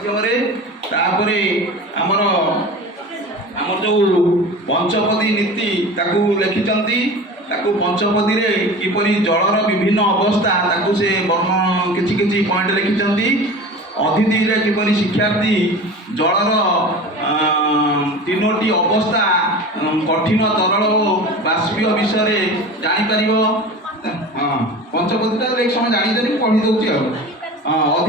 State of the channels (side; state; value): both; normal; correlation 0.35